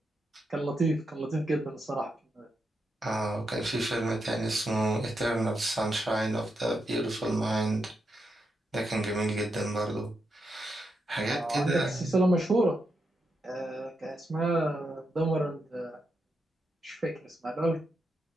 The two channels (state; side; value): normal; both; correlation 0.84